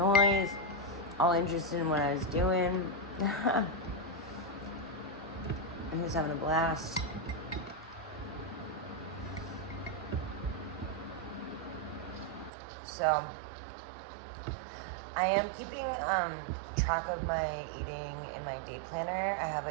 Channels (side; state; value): left; drops out; at 12.5 s